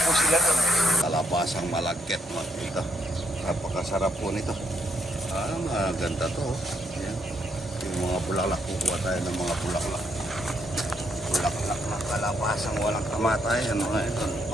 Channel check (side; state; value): both; normal; correlation 0.74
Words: po sila doon. Kalabasang malagkit mo dito. Napakasarap po nito. Maganda to. Yan. Yung mga bulaklak, kukuha tayo ng mga bulaklak. Bulaklak na kalabasang walang kamatayan.